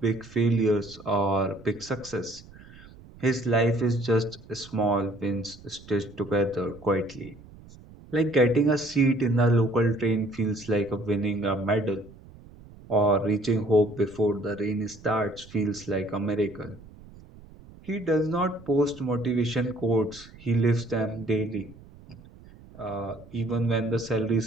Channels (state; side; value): noise; right; rumble, 21 dB below the sound